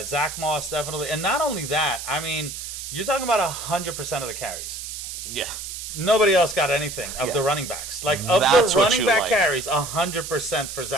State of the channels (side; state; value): right; noise; hiss, 8 dB below the sound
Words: Zach Moss definitely. And not only that, I mean, you're talking about 100% of the carries. Yeah. Nobody else got anything of the running backs. Like, of the running back carries, 100% for